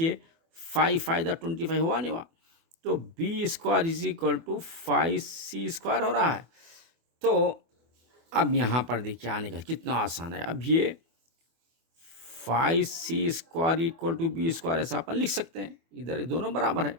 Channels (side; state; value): left; late; 24 ms